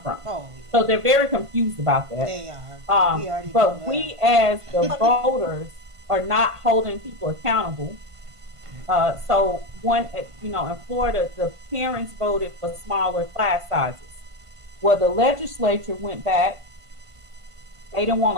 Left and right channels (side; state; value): left; late; 1.5 ms